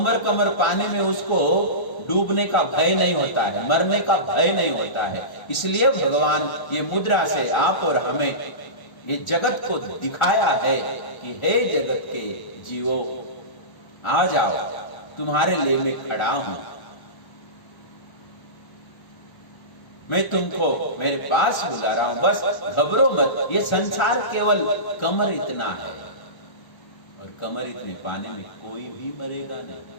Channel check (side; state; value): right; late; 1.4 ms